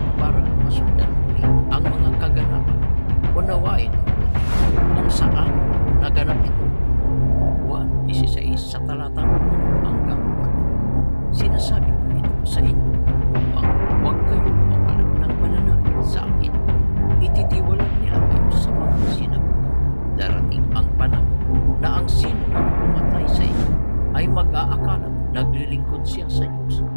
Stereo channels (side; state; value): both; inverted; correlation -1.00